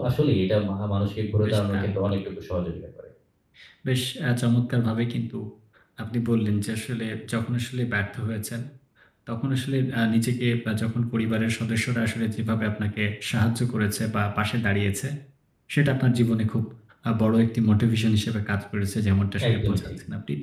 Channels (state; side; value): identical; both; correlation 1.00